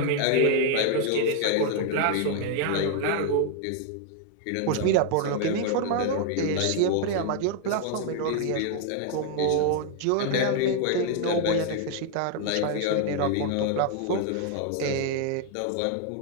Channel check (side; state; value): both; different; correlation 0.00